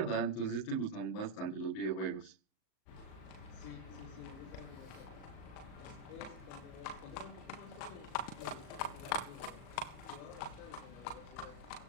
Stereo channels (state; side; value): late; right; 37 ms